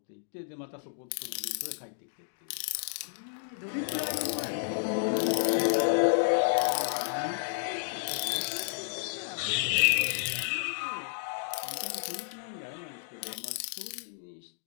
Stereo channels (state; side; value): silent; right; digital silence